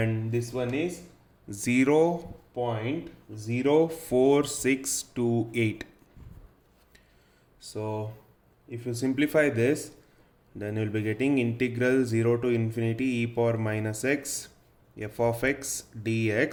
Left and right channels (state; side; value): identical; both; correlation 1.00